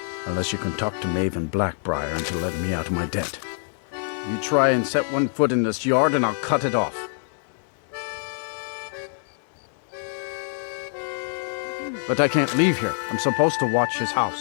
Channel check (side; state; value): right; silent; digital silence